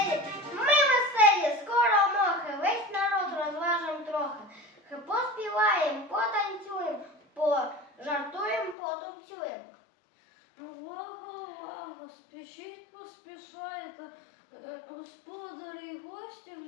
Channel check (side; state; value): right; drops out; at 8.8 s